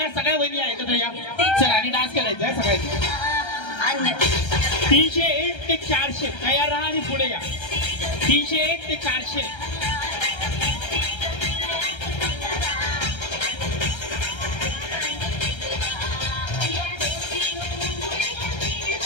वहिनी एकत्र या. चला आणि डान्स करायचा आहे सगळ्यांनी. 301 ते 400 तयार राहा आणि पुढे या. 301 ते 400.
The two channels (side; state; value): right; late; 1.3 ms